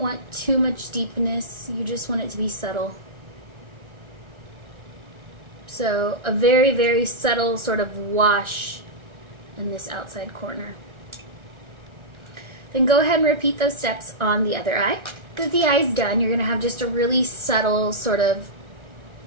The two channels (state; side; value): late; left; 1.4 ms